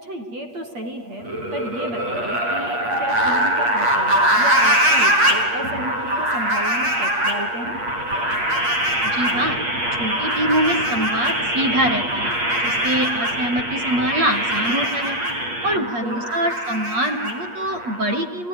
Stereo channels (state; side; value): late; left; 8.5 ms